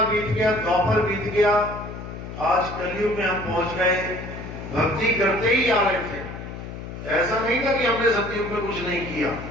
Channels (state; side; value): noise; left; hum, 10 dB below the sound